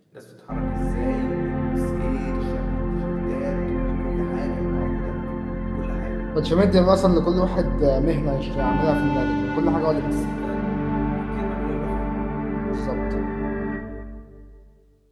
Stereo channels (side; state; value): both; identical; correlation 1.00